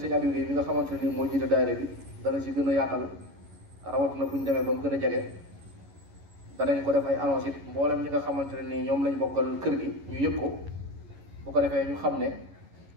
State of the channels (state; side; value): late; left; 11 ms